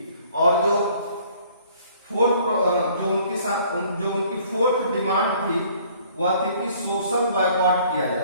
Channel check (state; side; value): inverted; both; correlation -0.57